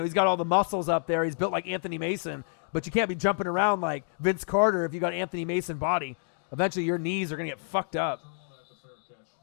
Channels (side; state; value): right; silent; digital silence